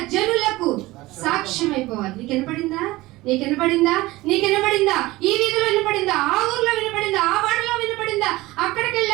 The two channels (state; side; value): quieter; left; 19.3 dB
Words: జనులకు సాక్ష్యం అయిపోవాలి. నీకు వినపడిందా? ఈ వీధిలో వినపడిందా? ఆ ఊర్లో వినపడిందా? ఆ వాడలో వినపడిందా? అక్కడికి